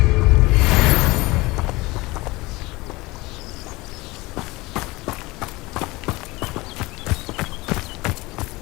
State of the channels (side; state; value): right; quieter; 21.8 dB